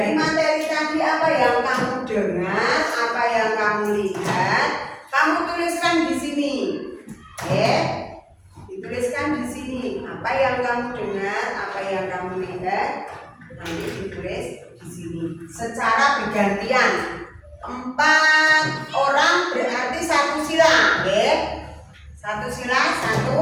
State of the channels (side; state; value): both; identical; correlation 1.00